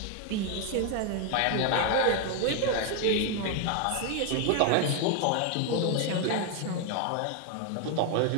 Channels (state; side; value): different; both; correlation 0.01